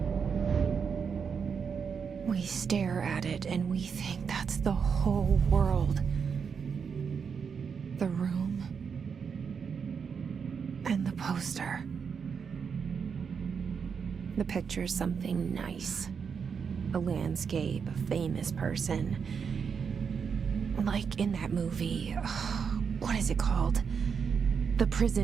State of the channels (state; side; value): quieter; left; 6.3 dB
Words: We stare at it and we think that's the whole world. The room and the poster. The picture's something nice. A landscape, a famous person. Like in that movie, what is it called? The